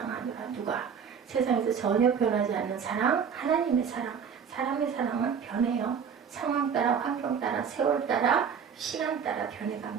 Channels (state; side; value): quieter; left; 7.0 dB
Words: 누가? 세상에서 전혀 변하지 않는 사랑, 하나님의 사랑. 사람의 사랑은 변해요. 상황 따라, 환경 따라, 세월 따라, 시간 따라